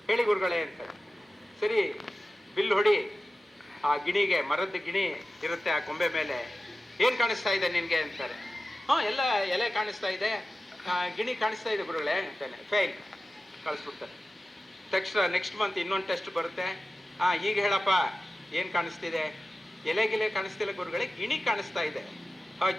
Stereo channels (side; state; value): both; normal; correlation 0.95